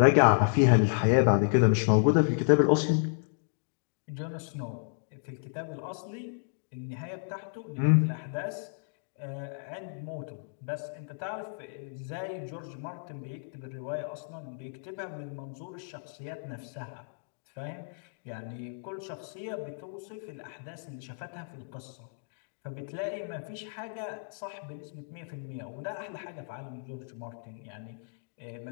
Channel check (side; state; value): right; silent; digital silence